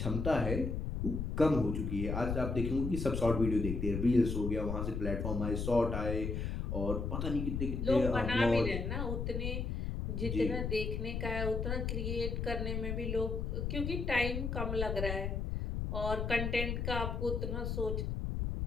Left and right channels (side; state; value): left; noise; rumble, 2 dB below the sound